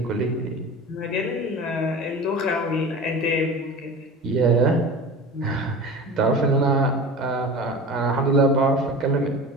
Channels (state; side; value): normal; both; correlation 0.34